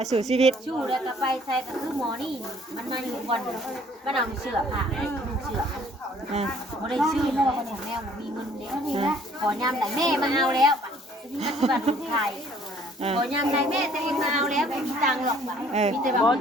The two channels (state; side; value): normal; both; correlation 0.58